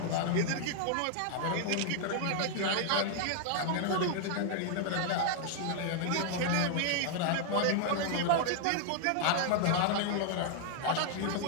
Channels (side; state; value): both; different; correlation 0.00